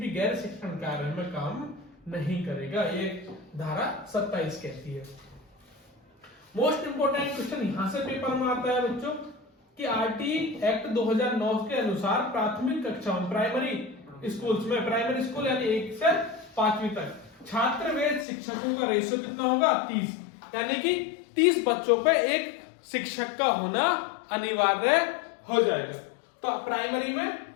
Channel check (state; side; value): drops out; right; at 18.2 s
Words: गैर शिक्षण कार्य में काम नहीं करेगा, ये धारा 27 कहती है। मोस्ट इंपोर्टेंट क्वेश्चन यहां से पेपर में आता है बच्चों कि आरटी एक्ट 2009 के अनुसार प्राथमिक कक्षाओं प्राइमरी स्कूल्स में, प्राइमरी स्कूल यानी 1 से 5वीं तक छात्र व शिक्षकों का रेशियो कितना होगा, 30, यानी कि 30 बच्चों पे एक शिक्षक का होना अनिवार्य हो जाएगा। तो प्राइमरी में